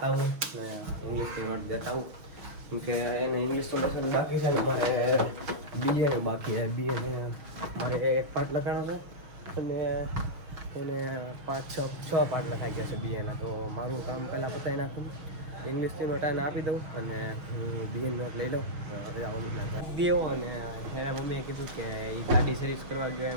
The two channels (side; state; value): left; late; 6.3 ms